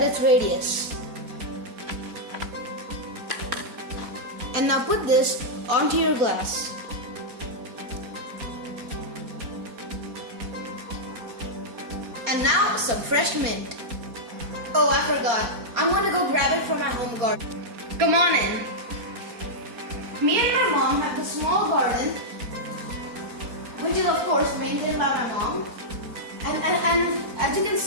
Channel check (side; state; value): left; late; 4.2 ms